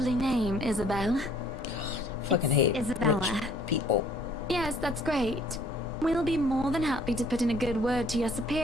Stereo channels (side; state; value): both; normal; correlation 0.58